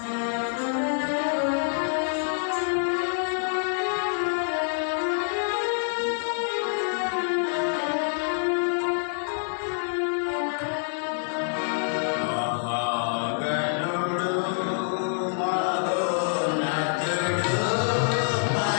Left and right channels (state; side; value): silent; right; 56 dB below the other